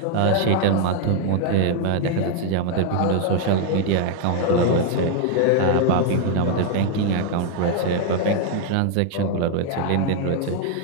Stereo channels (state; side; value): different; both; correlation 0.00